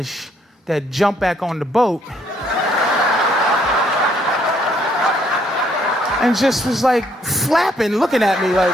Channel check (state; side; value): normal; both; correlation 0.68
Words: that jump back on the boat and just was like flapping, looking at me